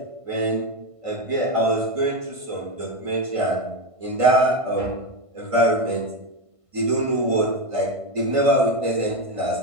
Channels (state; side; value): late; left; 1.5 ms